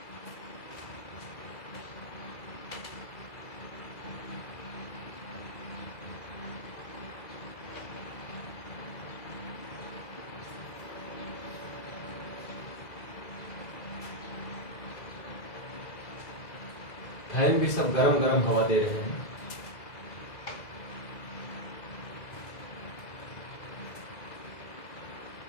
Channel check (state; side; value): late; right; 2.0 ms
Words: फैन भी सब गरम गरम हवा दे रहे हैं।